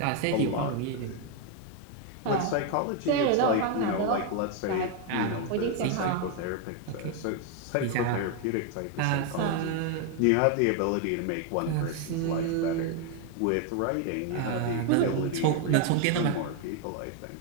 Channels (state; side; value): different; both; correlation 0.01